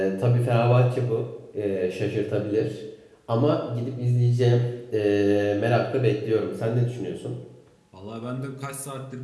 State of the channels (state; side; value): identical; both; correlation 1.00